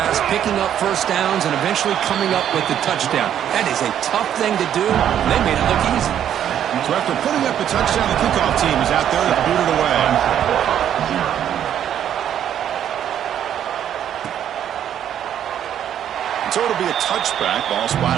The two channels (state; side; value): quieter; left; 10.0 dB